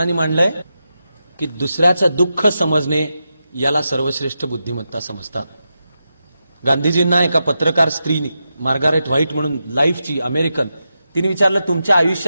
मांडलंय की दुसऱ्याचं दुःख समजणे याला सर्वश्रेष्ठ बुद्धिमत्ता समजतात. गांधीजींना एका पत्रकार स्त्रीने, मार्गारेट व्हाईट म्हणून, लाईफची अमेरिकन, तिने विचारलं, तुमच्या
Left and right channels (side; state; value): both; inverted; correlation -0.88